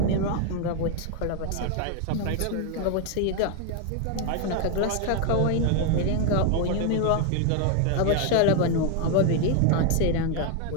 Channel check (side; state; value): both; different; correlation 0.01